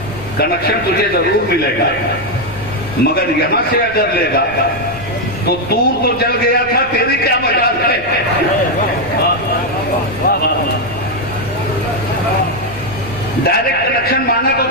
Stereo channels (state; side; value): noise; left; rumble, 18 dB below the sound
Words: کنیکشن تجھے ضرور ملے گا، مگر یہاں سے اگر لے گا تو دور تو جل گیا تھا، تیری کیا مجال ہے؟ ڈائریکٹ کنیکشن مانا تو